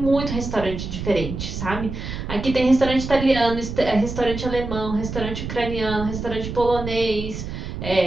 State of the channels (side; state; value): right; noise; rumble, 7 dB below the sound